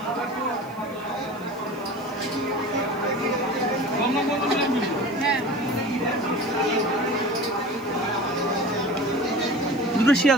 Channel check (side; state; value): left; noise; hiss, 25 dB below the sound